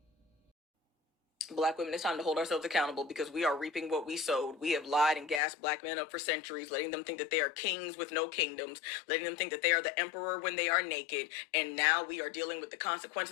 Black women, it's time to hold ourselves accountable because we are reaping what we sowed. We have lied and gassed Black men up for centuries, letting them think that they are kings with no kingdoms, letting them think that they are the emperor when they are naked. And now we are dealing with the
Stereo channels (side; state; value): right; drops out; at 5.4 s